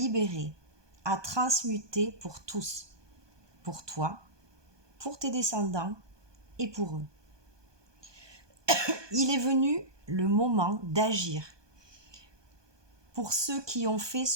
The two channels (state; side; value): late; left; 1.2 ms